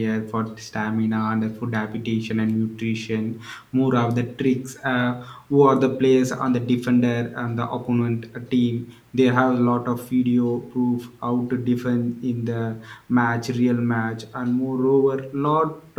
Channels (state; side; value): identical; both; correlation 1.00